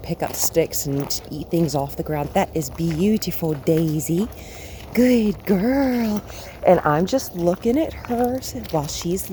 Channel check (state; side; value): identical; both; correlation 1.00